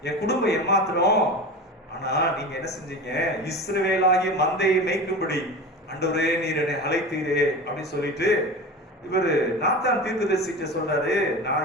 என் குடும்பம் எம்மாத்திரம். ஆனா நீங்க என்ன செஞ்சீங்க, இஸ்ரவேலாகிய மந்தையை மேய்க்கும்படி ஆண்டவரே நீர் என்னை அழைத்தீரே அப்படின்னு சொல்லிட்டு இவரு நாத்தான் தீர்க்கதரிசிட்ட சொல்றாரு,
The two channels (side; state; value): both; normal; correlation 0.30